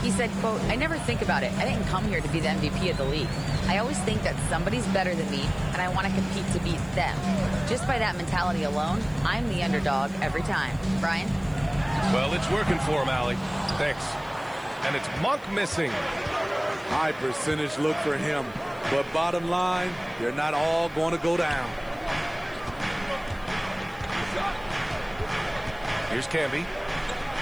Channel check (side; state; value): left; noise; hiss, 27 dB below the sound